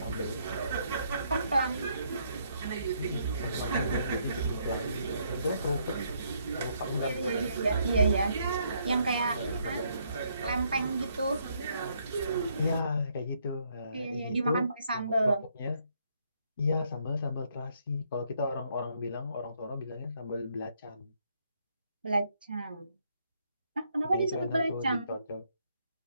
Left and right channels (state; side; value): inverted; both; correlation -0.72